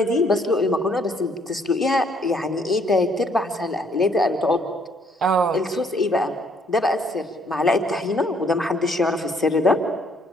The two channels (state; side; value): normal; both; correlation 0.65